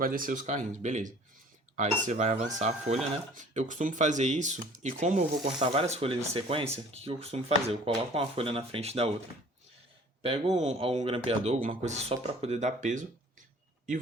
descer os carrinhos, beleza. Aí você vai avançar a folha, né? Eu costumo fazer isso, e como eu vou cortar várias folhas em sequência, o que eu costumo fazer? Eu coloco uma folha na frente da outra, pego um grampeador, alguma coisa só para poder dar peso, e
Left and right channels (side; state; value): both; normal; correlation 0.49